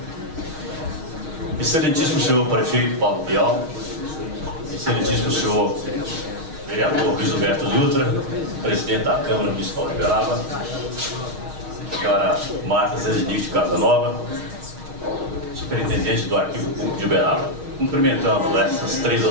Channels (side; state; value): left; late; 6.4 ms